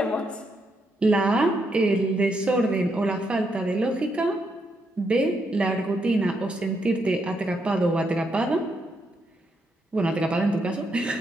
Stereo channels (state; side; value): normal; both; correlation 0.79